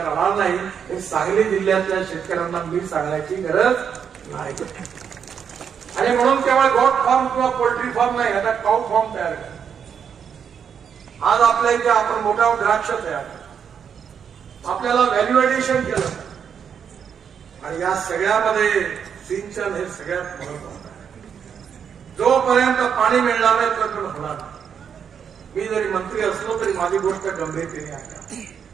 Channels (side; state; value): left; quieter; 7.5 dB